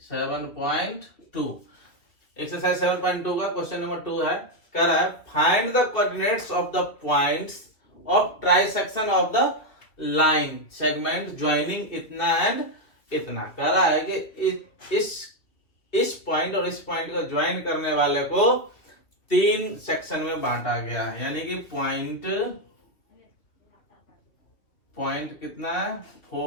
7.2 एक्सरसाइज 7.2 का क्वेश्चन नंबर 2 है। कह रहा है find the coordinates of the points of trisection of the line segment joining इतना एंड इतना। कह रहा है कि इस पॉइंट और इस पॉइंट को ज्वाइन करने वाले को 3 सेक्शन में बांटा गया है, यानी कि पॉइंट कितना है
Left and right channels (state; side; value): late; right; 2.5 ms